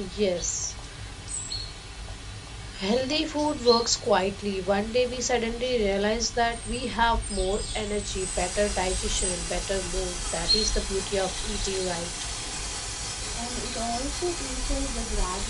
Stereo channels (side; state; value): both; identical; correlation 1.00